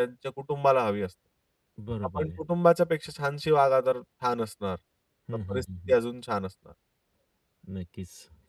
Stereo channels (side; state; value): both; identical; correlation 1.00